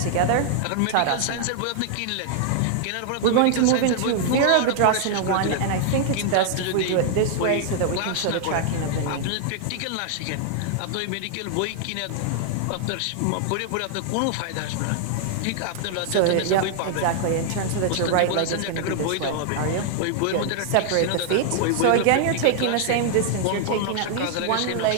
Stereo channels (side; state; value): both; different; correlation -0.01